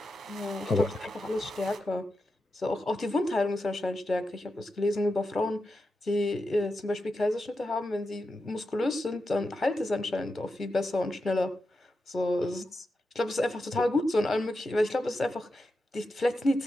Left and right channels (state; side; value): normal; both; correlation 0.89